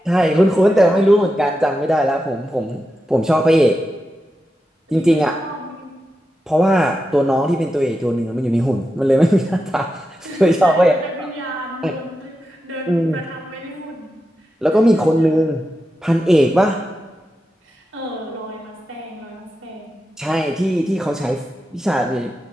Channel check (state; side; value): normal; both; correlation 0.89